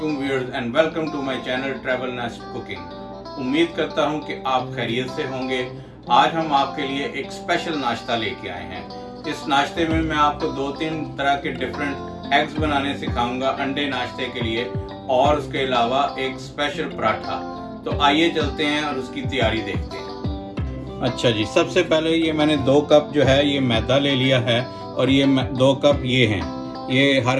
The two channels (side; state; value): both; identical; correlation 1.00